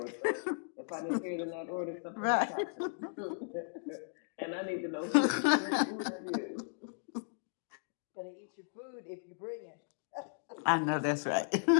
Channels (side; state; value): right; silent; digital silence